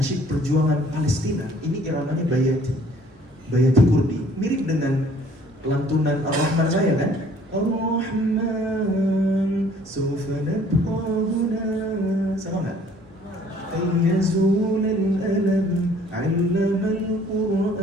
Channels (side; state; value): both; normal; correlation 0.57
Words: perjuangan Palestina ini iramanya bayati, bayati kurdi, mirip dengan lantunan Ar-Rahman saya kan? Ar-Rahman sawfa nabqa huna, sama nggak? Ayyazul al-alam 'allama